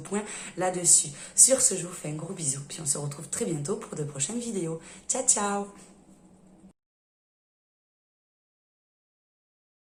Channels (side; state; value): both; identical; correlation 1.00